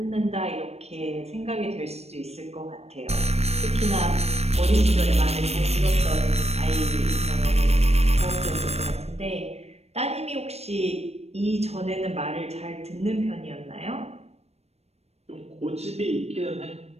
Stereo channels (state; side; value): late; left; 0.31 ms